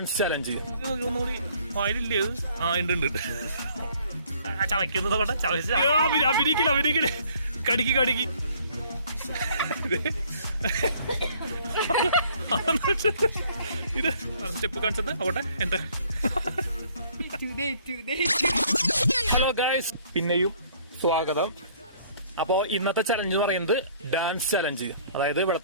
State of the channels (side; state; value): both; inverted; correlation -0.59